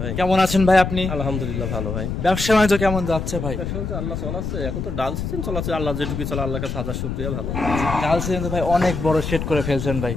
ভাই, কেমন আছেন ভাই আপনি? আলহামদুলিল্লাহ ভালো ভাই। ব্যবসা বাণিজ্য কেমন যাচ্ছে ভাই? ব্যবসা বাণিজ্য আল্লাহ চলাচ্ছে, এখন তো ডাল সিজন চলাচ্ছে, আল্লাহ যেটুকু চলে আল্লাহর কাছে হাজার শুকরিয়া। ভালো ডাল সিজন তো ভাই অনেক বড় সেট করে ফেলছেন ভাই।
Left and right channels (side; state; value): left; noise; rumble, 4 dB below the sound